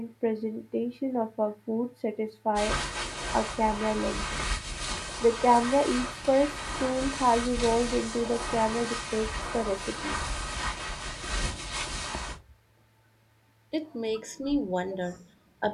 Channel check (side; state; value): both; identical; correlation 1.00